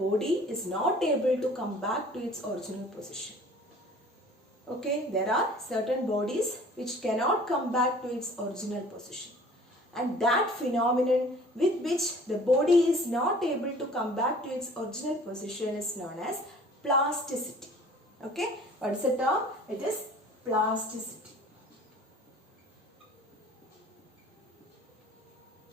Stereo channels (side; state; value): both; normal; correlation 0.49